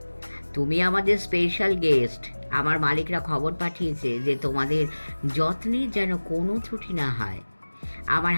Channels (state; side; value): inverted; both; correlation -1.00